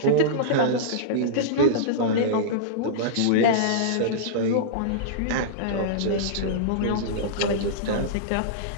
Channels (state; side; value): different; both; correlation -0.03